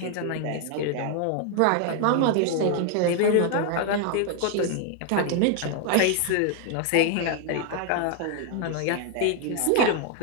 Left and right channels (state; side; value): different; both; correlation 0.00